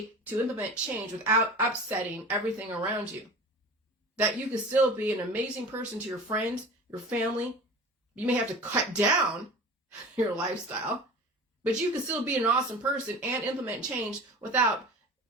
to implement change without upsetting everything around you. That you can still be an amazing person to your friends, your family. You may have to cut down your lifestyle, but you can still be an awesome person and implement change without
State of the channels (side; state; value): both; normal; correlation 0.36